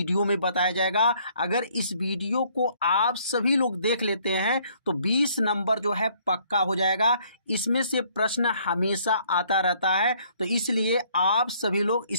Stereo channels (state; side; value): inverted; both; correlation -0.63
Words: में बताया जाएगा। अगर इस वीडियो को आप सभी लोग देख लेते हैं तो 20 नंबर जो है पक्का हो जाएगा। इसमें से प्रश्न हमेशा आता रहता है, तो इसलिए आप सभी लोग